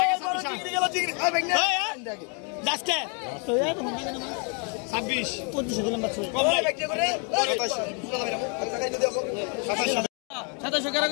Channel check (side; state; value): right; quieter; 37.1 dB